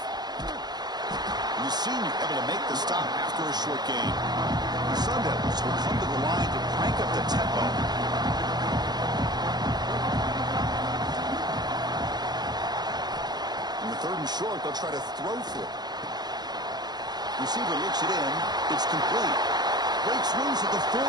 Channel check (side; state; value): left; late; 0.20 ms